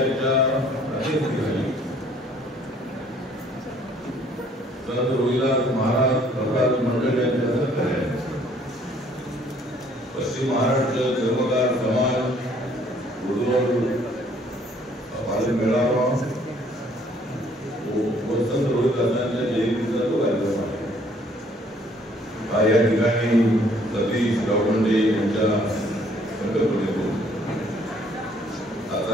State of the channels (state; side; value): normal; both; correlation 0.61